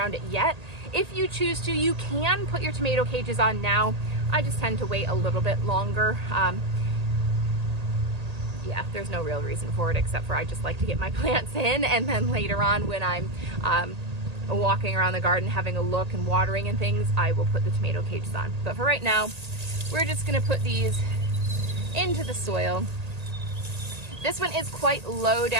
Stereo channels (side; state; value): left; late; 1.8 ms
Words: it yet. If you choose to, you can put your tomato cages on now. I just tend to wait a little bit longer. Yeah, there's no real reason for it except for I just like to get my plants in, and then later on when I'm walking around the garden having a look and watering and things, I will put the tomato cages on. But for right now, we're just gonna put these into the soil. This one is quite low